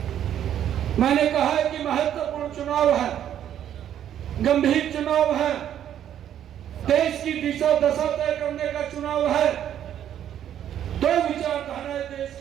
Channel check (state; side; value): quieter; left; 10.4 dB